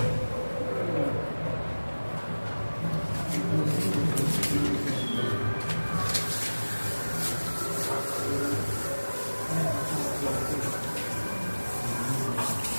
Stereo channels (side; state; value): both; inverted; correlation -1.00